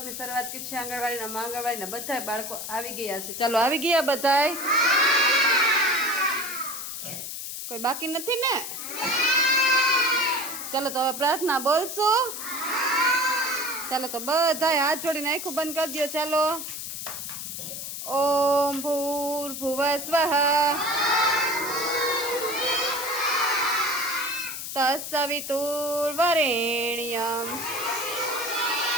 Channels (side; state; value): left; noise; hiss, 7 dB below the sound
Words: શરૂઆત કરી છે આંગણવાડીના બધા બાળકો આવી ગયા છે। ચાલો આવી ગયા બધાય? કોઈ બાકી નથી ને? ચાલો તો હવે પ્રાર્થના બોલશું। ચાલો તો બધાય હાથ જોડીને આંખો બંધ કરી દો। ચાલો ઓમ ભૂર્ભુવઃ સ્વઃ તત્સવિતુર્વરેણ્યં